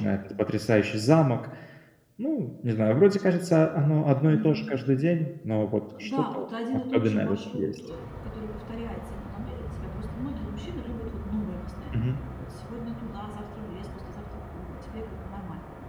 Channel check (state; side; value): identical; both; correlation 1.00